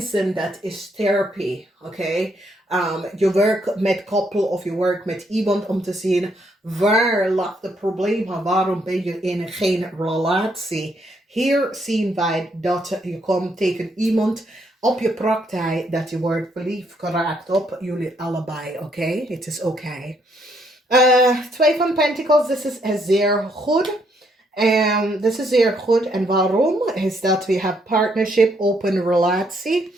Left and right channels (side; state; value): both; normal; correlation 0.72